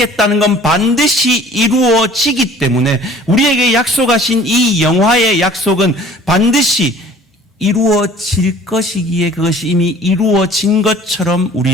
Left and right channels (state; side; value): normal; both; correlation 0.50